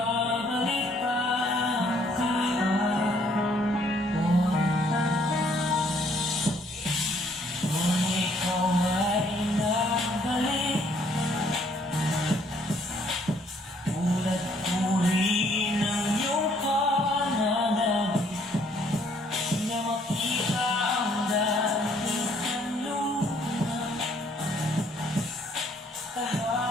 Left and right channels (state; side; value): normal; both; correlation 0.65